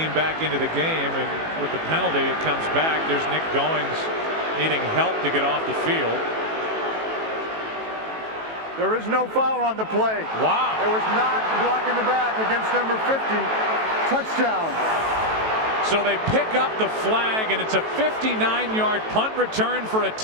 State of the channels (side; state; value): left; late; 18 ms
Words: back into the game, and with the penalty it comes back. There's Nick Goings needing help to get off the field. there is no foul on the play. Wow. It was not a block in the back against number 50. Touchdown. So they pick up the flag, and it's a 59-yard punt return for a